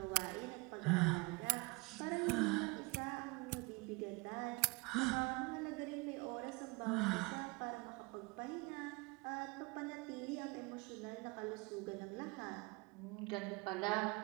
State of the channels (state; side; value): quieter; left; 27.1 dB